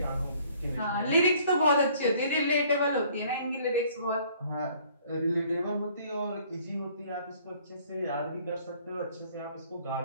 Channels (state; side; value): inverted; both; correlation -0.58